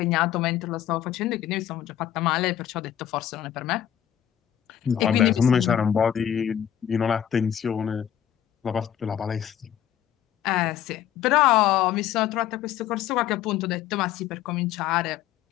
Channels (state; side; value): quieter; right; 10.6 dB